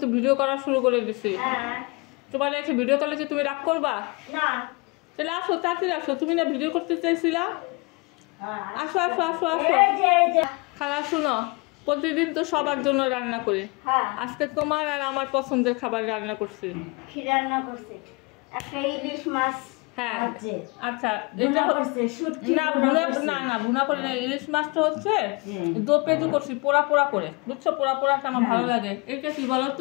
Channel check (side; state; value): right; quieter; 27.9 dB